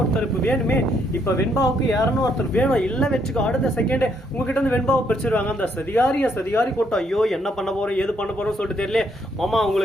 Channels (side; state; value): both; normal; correlation 0.72